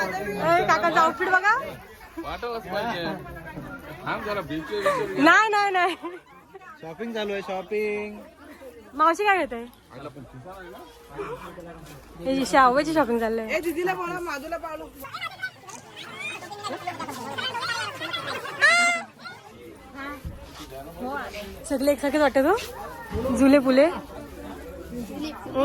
काकाचा आउटफिट बघा. नाही नाही नाही, शॉपिंग चालू आहे. शॉपिंग मावशी काय घेते? शाहूची शॉपिंग चाललंय. दीदीला बोला, माधूला पावलो. सगळे एकसारखेच वाटत हो, झुले फुले.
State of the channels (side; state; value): both; identical; correlation 1.00